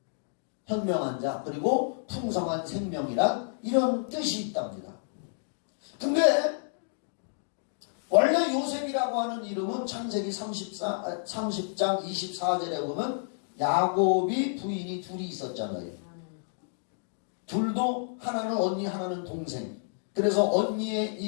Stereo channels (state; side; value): silent; right; digital silence